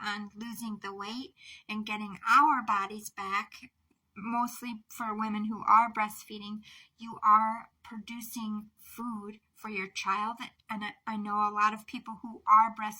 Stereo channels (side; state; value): both; identical; correlation 1.00